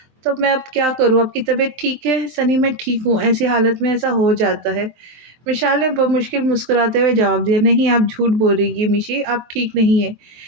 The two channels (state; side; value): late; left; 24 ms